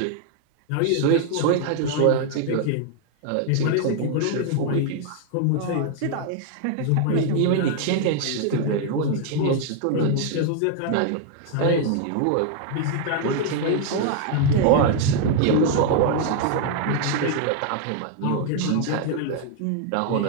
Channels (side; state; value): both; different; correlation 0.00